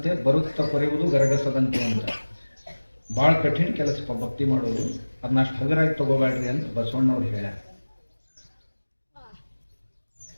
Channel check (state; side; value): inverted; both; correlation -1.00